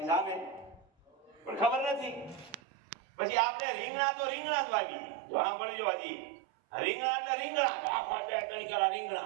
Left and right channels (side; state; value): left; drops out; at 2.6 s